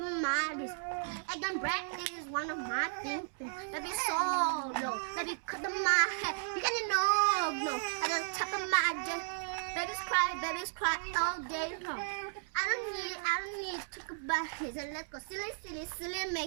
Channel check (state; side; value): silent; left; digital silence